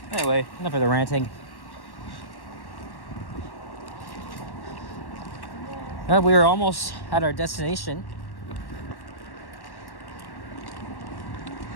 Anyway, enough of the ranting. We are almost at our destination.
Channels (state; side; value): late; right; 1.1 ms